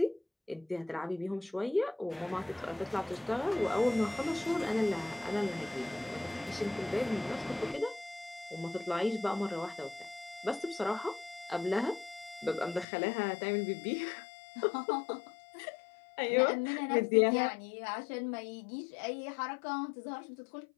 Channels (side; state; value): right; drops out; at 12.9 s